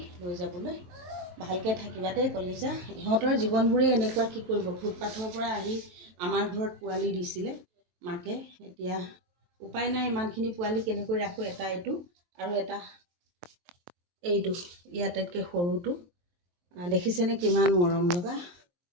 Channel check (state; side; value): late; left; 23 ms